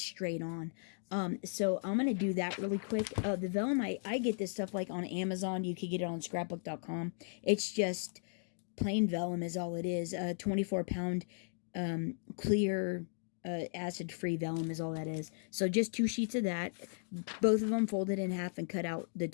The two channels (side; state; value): right; silent; digital silence